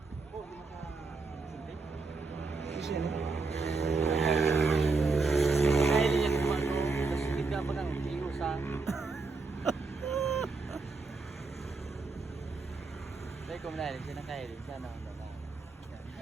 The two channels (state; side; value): quieter; left; 4.1 dB